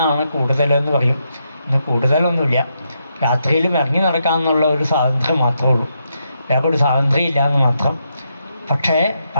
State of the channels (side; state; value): both; inverted; correlation -0.81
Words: കൂടുതലെന്ന് പറയും. ഇന്ന് കൂടുതലൊന്നുമില്ല. രാത്രിയിലും ഇറങ്ങി നടക്കാമെന്നുള്ള ഒരു സ്വാതന്ത്ര്യം മാത്രമേ ഉള്ളൂ. വേറെ ഒരു സ്വാതന്ത്ര്യം ഇല്ല എന്ന് മാത്രം. പക്ഷേ